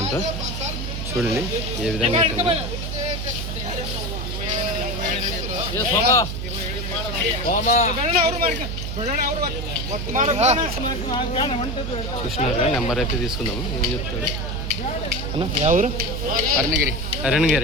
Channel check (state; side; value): noise; right; hum, 4 dB below the sound